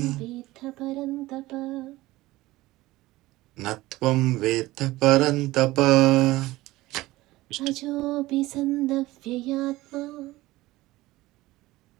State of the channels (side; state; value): left; quieter; 18.3 dB